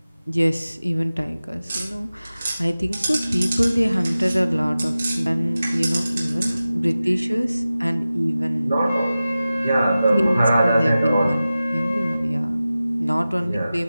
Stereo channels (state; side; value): inverted; both; correlation -0.95